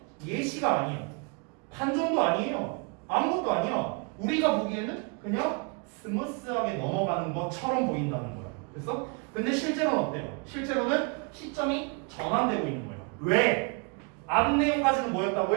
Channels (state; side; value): quieter; left; 34.3 dB